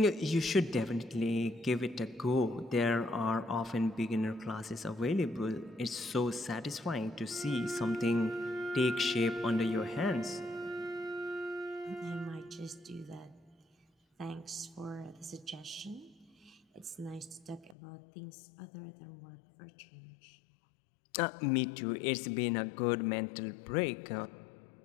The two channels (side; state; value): right; drops out; at 17.8 s